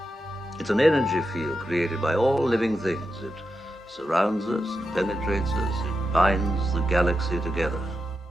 It's an energy field created by all living things. It surrounds us, it penetrates us, it binds the galaxy together.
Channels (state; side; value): normal; both; correlation 0.88